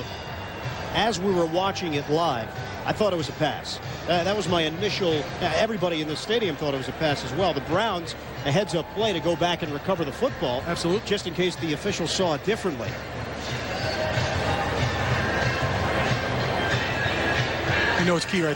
as we were watching it live, I thought it was a pass. That was my initial... everybody in the stadium thought it was a pass as well. The Browns, a heads-up play to go back and recover the football. Absolutely. Just in case the officials saw it differently. You know, it's key right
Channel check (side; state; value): both; identical; correlation 1.00